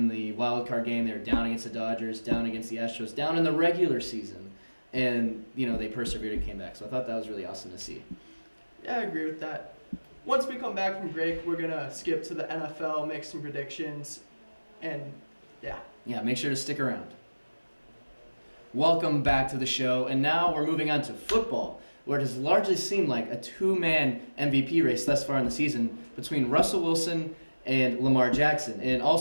the wild card game, they were down against the Dodgers, down against the Astros, down in the regular season, and they persevered and came back. So I thought that was really awesome to see. Yeah, I agree with that. Once we come back from break, we're going to skip to the NFL, make some predictions, and yeah. Yeah, make sure to stick around. Welcome back to the show, and now we're moving on to football, where it has largely seemed like a two-man MVP race thus far in the season between Russell Wilson and Lamar Jackson. And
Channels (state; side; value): inverted; both; correlation -1.00